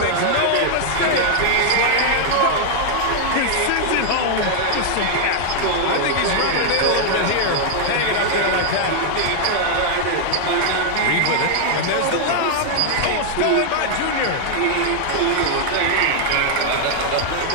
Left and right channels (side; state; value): both; different; correlation 0.00